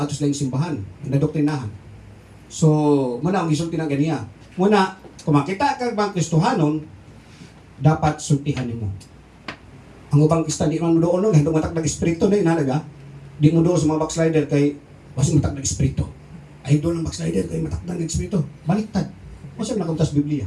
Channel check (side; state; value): both; identical; correlation 1.00